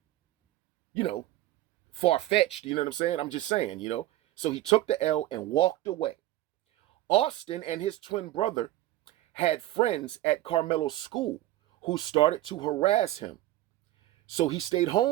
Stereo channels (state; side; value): quieter; left; 15.5 dB